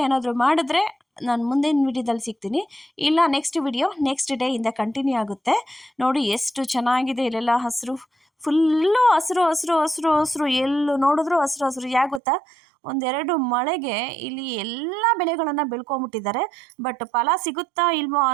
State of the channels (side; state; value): left; drops out; at 12.2 s